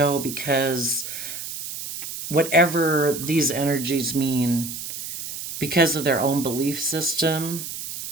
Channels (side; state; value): right; noise; hiss, 8 dB below the sound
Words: because whatever these energies mean because of their own belief system